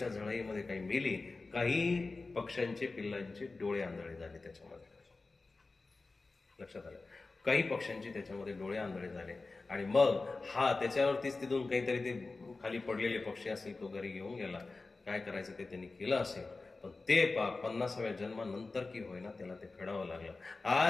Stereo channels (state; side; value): quieter; right; 3.7 dB